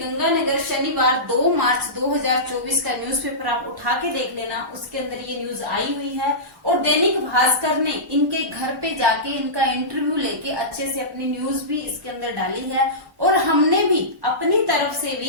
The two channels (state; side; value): normal; both; correlation -0.19